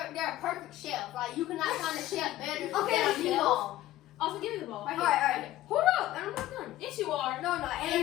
a perfect chef. Like you cannot find a chef better than Okay, mom. Also, give me the ball. Right All right. Hold up, and I'm not done. Yes, you are. No, and I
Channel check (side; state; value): right; quieter; 14.7 dB